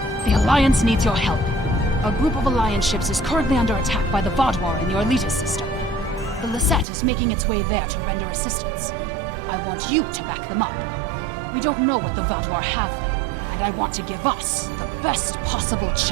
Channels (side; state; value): left; drops out; at 6.9 s